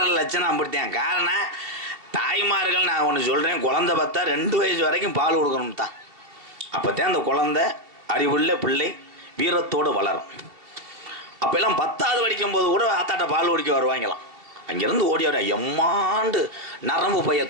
லட்சணம் அப்படித்தான். காரணம் தாய்மார்கள், நான் ஒன்று சொல்கிறேன், குழந்தை பார்த்தா 2 வயசு வரைக்கும் பால் கொடுக்கணும் தான். அப்போத்தான் அந்த குழந்தை அறிவுள்ள பிள்ளை வீரத்தோடு வளரும். அப்போல்லாம் 10வது படிக்கும்போது கூட ஆத்தாட்ட பால் குடிக்க வருவாங்களாம். அங்கேருந்து ஓடி வர எம்மாண்டு நரம்பு பைய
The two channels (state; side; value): late; left; 2.8 ms